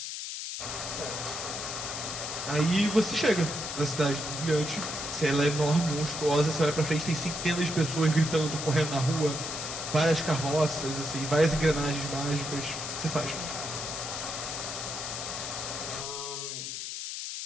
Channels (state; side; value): noise; left; hiss, 5 dB below the sound